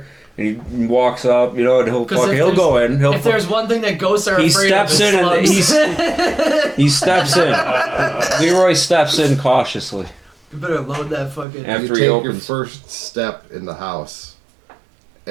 and he walks up, you know, and he'll 'Cause if he'll go in. He'll If there's one thing that ghosts are he afraid steps of, in and it's he steps in. Leroy steps in cautiously You better load that fucking. after You he take your opens. first step in the house,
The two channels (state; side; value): drops out; left; at 11.5 s